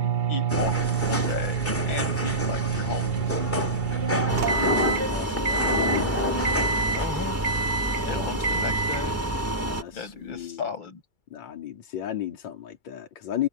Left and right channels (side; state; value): right; late; 2.3 ms